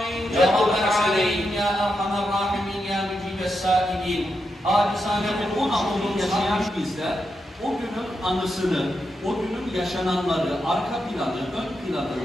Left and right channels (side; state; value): both; normal; correlation 0.85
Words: Ceddül Hasaneyn, Ya Erhamer Rahimin, Ya Mücibes Sâilin. Acizane bunun anlamını yaşayan bizler, o günün anısını, o günün yaşananları, arka planı, ön planı